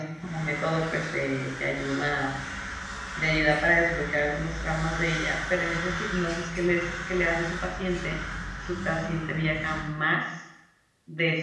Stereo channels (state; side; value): identical; both; correlation 1.00